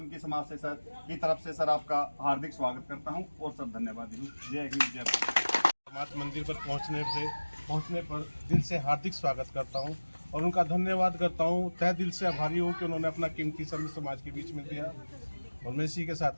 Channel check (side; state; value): both; inverted; correlation -1.00